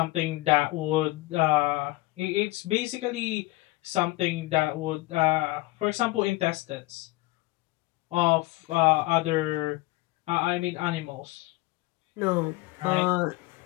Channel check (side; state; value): right; quieter; 20.9 dB